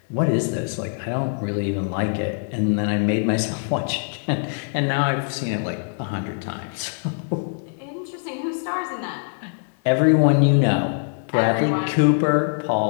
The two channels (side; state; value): right; silent; digital silence